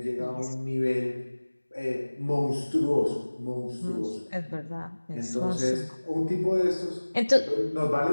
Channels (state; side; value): inverted; both; correlation -1.00